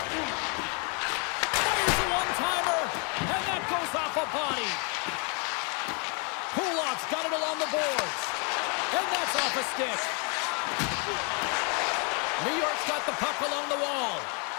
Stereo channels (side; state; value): right; quieter; 36.0 dB